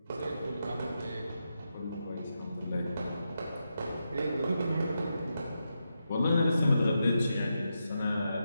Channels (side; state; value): both; inverted; correlation -0.86